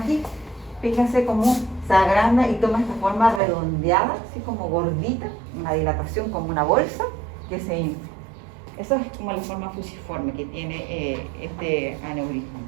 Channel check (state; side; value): drops out; left; at 3.4 s